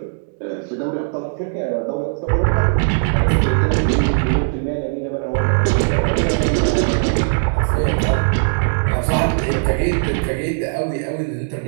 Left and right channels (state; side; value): silent; left; digital silence